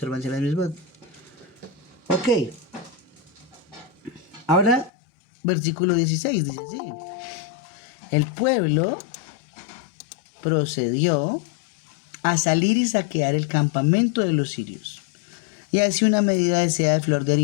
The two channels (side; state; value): right; drops out; at 4.9 s